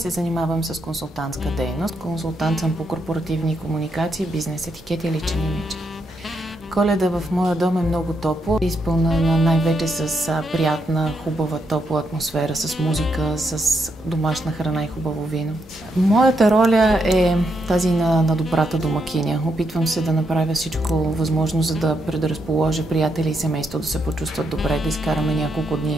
занимавам с консултантска дейност. Консултант съм по корпоративни комуникации, бизнес етикет и личен имидж. Коледа в моя дом е много топло, изпълнена най-вече с приятна, хубава, топла атмосфера, с музика, с домашна храна и хубаво вино. Моята роля е тази на добрата домакиня. Опитвам се да направя всичко възможно, за да предразположа приятели и семейство да се почувстват добре, да изкараме няколко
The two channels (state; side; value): normal; both; correlation 0.80